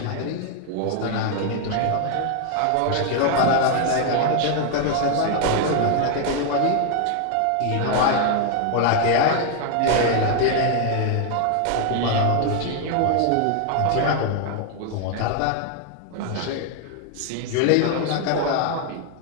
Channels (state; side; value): different; both; correlation 0.00